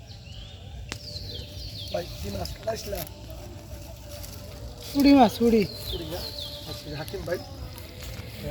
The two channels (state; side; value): identical; both; correlation 1.00